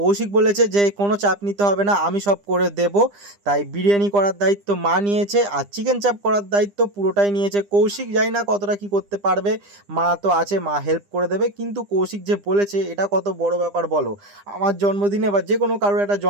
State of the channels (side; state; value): left; late; 9.9 ms